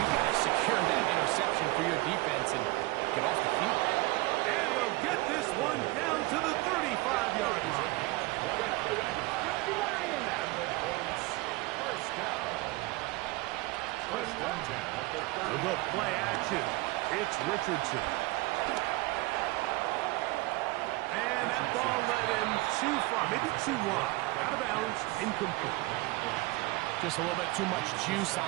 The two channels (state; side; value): quieter; left; 22.0 dB